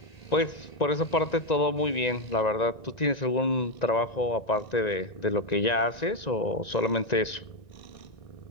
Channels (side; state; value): right; late; 1.9 ms